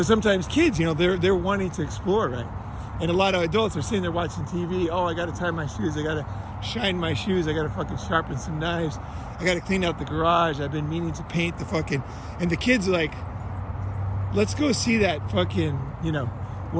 sometimes kids, you know, they're wanting to explore, right? And a lot of adults are sitting there watching TV. Oh, I got to tie my shoes. I got to shine my shoes. I got to fucking sharpen some knives. I got to clean out the garage. I've been meaning to paint the fucking... And the kid's like, let's go see that fucking, you know,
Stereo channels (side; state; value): both; identical; correlation 1.00